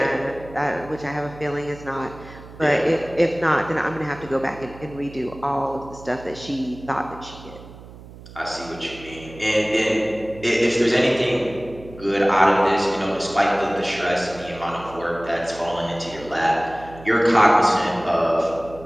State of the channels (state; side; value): noise; right; hum, 17 dB below the sound